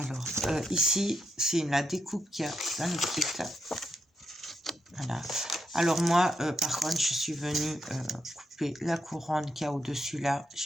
ici, c'est la découpe qu'il y a dans le kit. Voilà. Alors moi, par contre, je suis venue couper la couronne qu'il y a au-dessus là,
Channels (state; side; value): normal; both; correlation 0.81